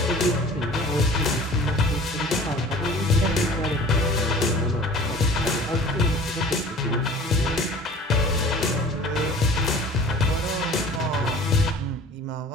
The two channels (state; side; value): normal; both; correlation 0.44